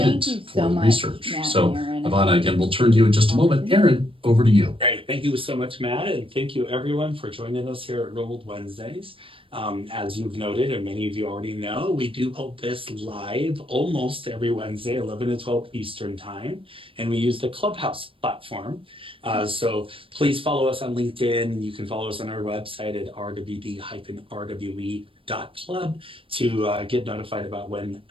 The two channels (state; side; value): late; left; 0.26 ms